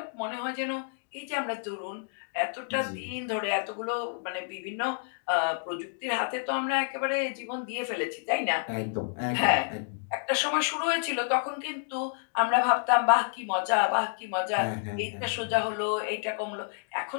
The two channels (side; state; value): right; silent; digital silence